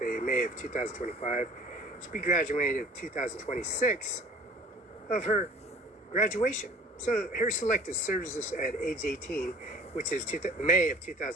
in May of 2025. She'll be graduating in 2026 of her graduation. So her selected services at age 18, which is May of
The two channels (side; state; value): both; normal; correlation 0.47